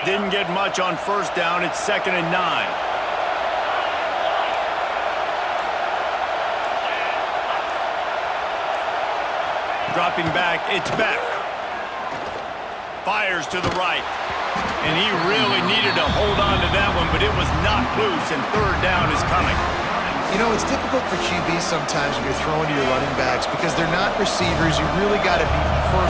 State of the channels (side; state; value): both; identical; correlation 1.00